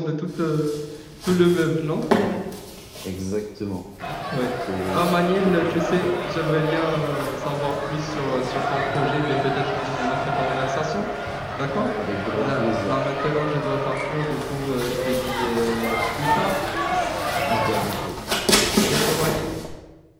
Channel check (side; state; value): both; identical; correlation 1.00